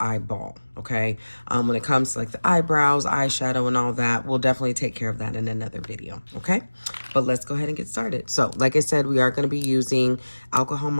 eyeball, okay? When it comes to like the eyebrows, eyeshadow, and all that, we'll definitely take care of that in another video, okay? But let's go ahead and get started. So, like I said, we are going to be using alcohol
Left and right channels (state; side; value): inverted; both; correlation -1.00